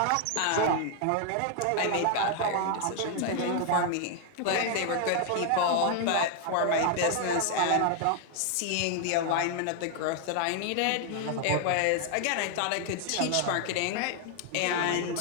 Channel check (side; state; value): both; different; correlation 0.00